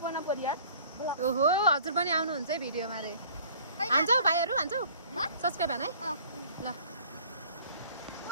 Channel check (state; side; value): inverted; both; correlation -0.51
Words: परिवार। ओहो हजुर पनि आउनुहुन्छ है भिडियोमा रे। हान्छौ भाइहरू, हान्छौ सब्सक्राइब हान है। ल